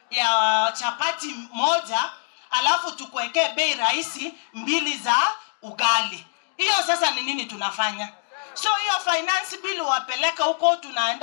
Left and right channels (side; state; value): right; silent; digital silence